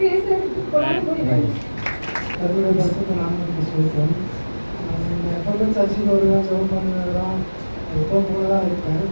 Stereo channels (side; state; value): both; inverted; correlation -1.00